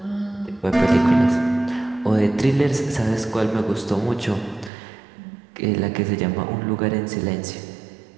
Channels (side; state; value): left; drops out; at 4.7 s